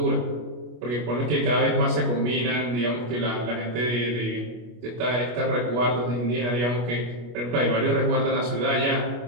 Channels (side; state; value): left; late; 25 ms